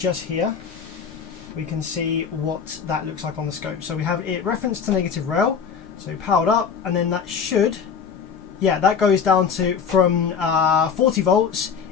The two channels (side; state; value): right; quieter; 6.6 dB